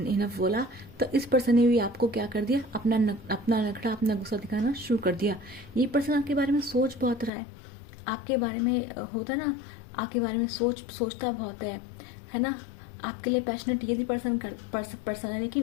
बोला, तो इस पर्सन ने भी आपको क्या कर दिया, अपना नखरा, अपना गुस्सा दिखाना शुरू कर दिया। ये पर्सन आपके बारे में सोच बहुत रहा है, आपके बारे में होता है ना, आपके बारे में सोचता बहुत है ना। आपके लिए पैशनेट ये भी पर्सन है,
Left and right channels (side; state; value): right; drops out; at 7.3 s